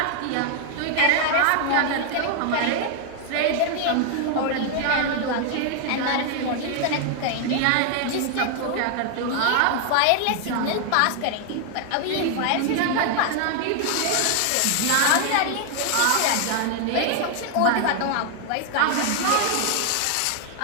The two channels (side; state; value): both; different; correlation 0.00